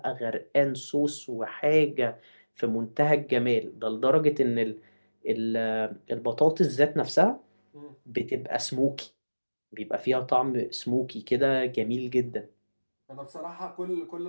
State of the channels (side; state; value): both; inverted; correlation -1.00